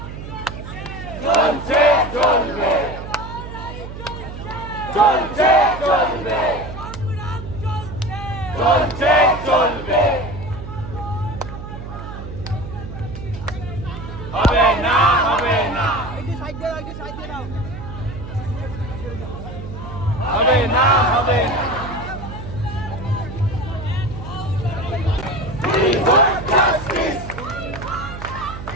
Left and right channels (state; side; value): noise; right; hum, 10 dB below the sound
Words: চলছে চলবে, চলছে চলবে, চলছে চলবে, হবে না, হবে না, হবে না, হবে না। We want justice.